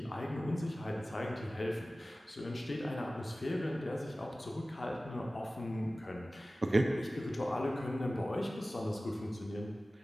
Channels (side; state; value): both; normal; correlation 0.97